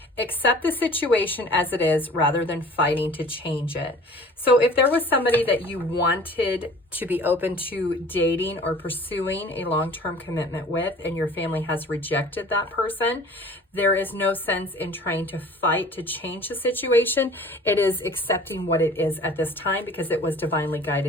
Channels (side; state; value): both; normal; correlation 0.47